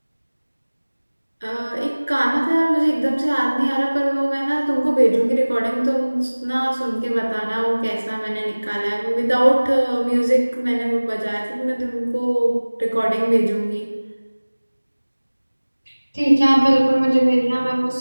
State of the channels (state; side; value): inverted; both; correlation -1.00